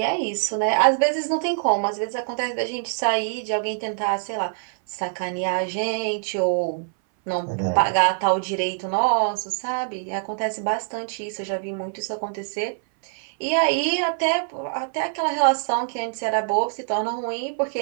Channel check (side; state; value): left; silent; 59 dB below the other